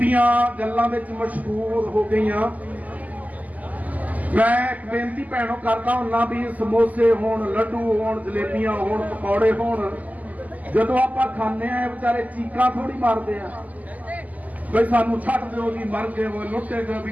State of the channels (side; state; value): left; late; 0.078 ms